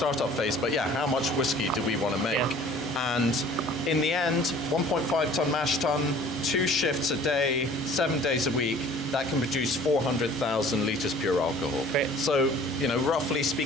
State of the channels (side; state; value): both; normal; correlation 0.49